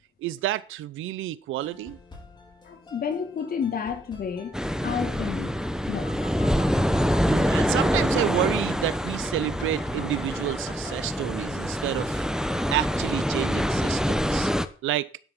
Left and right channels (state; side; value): normal; both; correlation 0.69